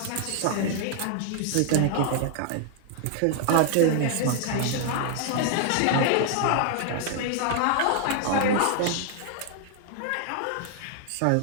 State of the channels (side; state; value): both; different; correlation 0.00